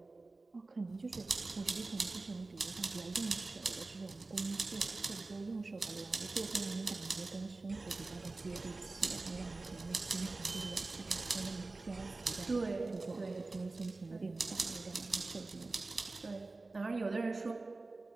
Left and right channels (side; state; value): left; quieter; 3.4 dB